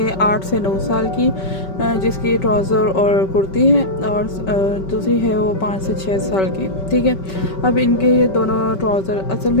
8 से 9 साल की जिसकी ट्राउज़र और कुर्ती है, और दूसरी है वो 5 से 6 साल की। ठीक है, अब इनके ये दोनों ट्राउज़र, असल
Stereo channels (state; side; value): late; right; 5.2 ms